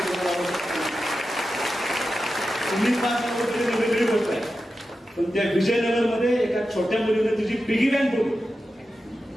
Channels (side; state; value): both; normal; correlation 0.91